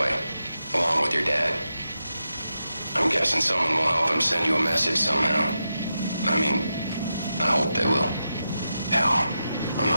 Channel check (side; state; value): both; inverted; correlation -0.88